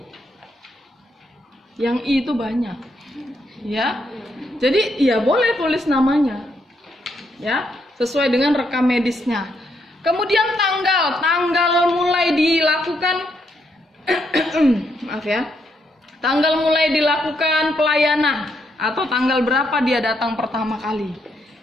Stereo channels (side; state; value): both; normal; correlation 0.77